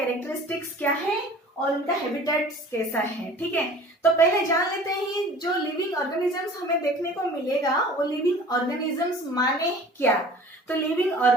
क्या है और उनका हैबिटेट्स कैसा है। ठीक है, तो पहले जान लेते हैं जो लिविंग ऑर्गेनिजम्स हमें देखने को मिलेगा वो लिविंग ऑर्गेनिजम्स माने क्या। तो लिविंग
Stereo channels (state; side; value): normal; both; correlation 0.45